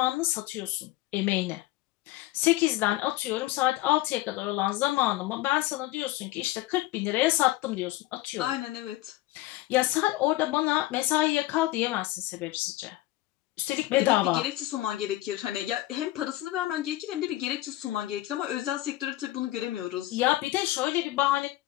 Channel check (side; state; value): right; quieter; 17.2 dB